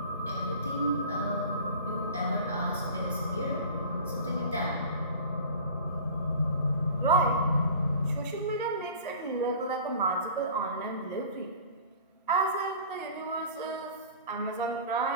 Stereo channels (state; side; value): inverted; both; correlation -0.40